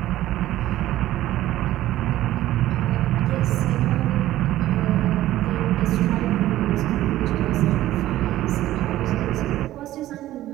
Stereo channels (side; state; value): left; quieter; 14.6 dB